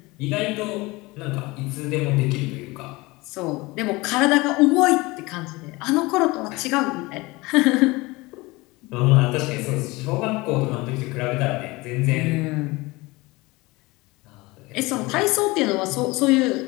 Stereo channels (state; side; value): quieter; right; 22.7 dB